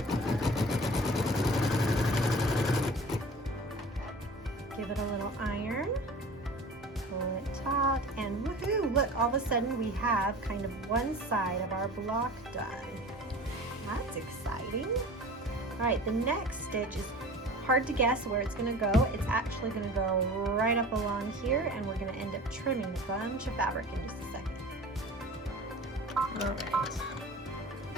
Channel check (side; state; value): both; normal; correlation 0.39